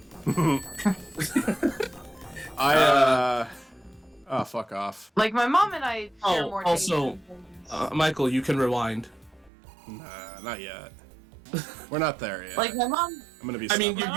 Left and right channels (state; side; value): drops out; left; at 9.5 s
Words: Oh, fuck off. Like my mom and I share Oh, more also, taste in things. Michael, you can rewind. Nah, not yet. We're not there yet. Like my mom. I'm gonna be. I mean, stubborn.